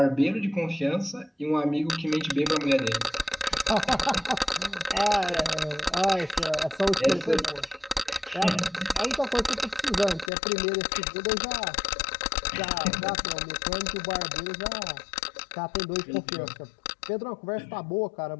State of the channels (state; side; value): drops out; right; at 10.3 s